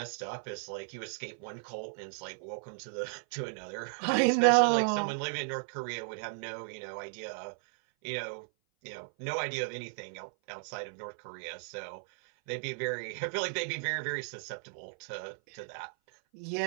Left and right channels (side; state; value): left; silent; 55 dB below the other